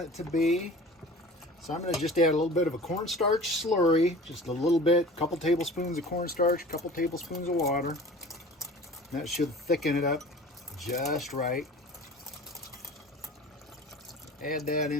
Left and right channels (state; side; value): normal; both; correlation 0.41